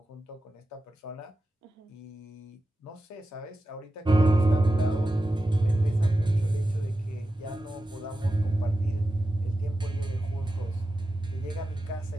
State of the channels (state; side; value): normal; both; correlation 0.92